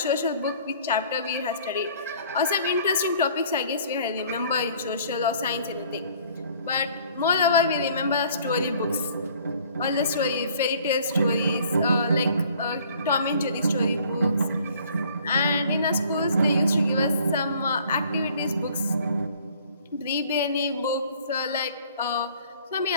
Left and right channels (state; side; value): inverted; both; correlation -0.55